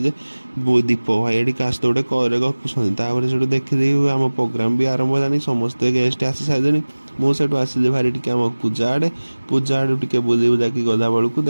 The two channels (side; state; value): both; inverted; correlation -1.00